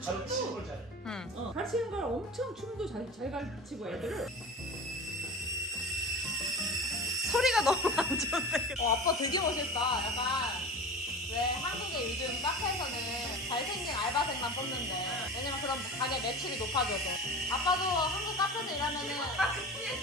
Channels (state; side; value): normal; both; correlation 0.32